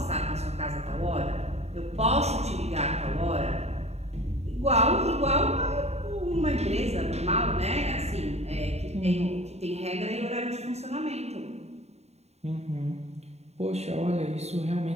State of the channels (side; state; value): left; late; 0.31 ms